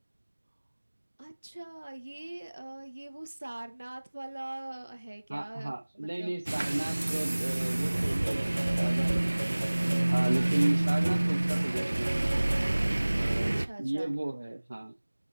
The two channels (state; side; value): inverted; both; correlation -1.00